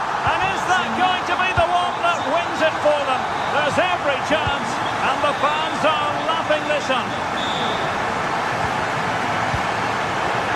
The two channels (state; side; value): identical; both; correlation 1.00